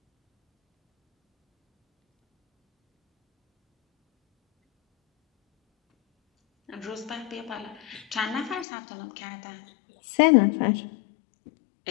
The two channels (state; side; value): drops out; right; at 8.7 s